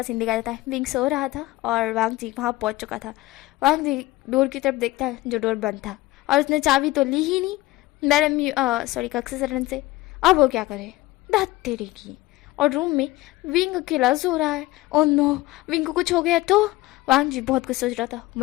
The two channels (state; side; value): quieter; right; 18.7 dB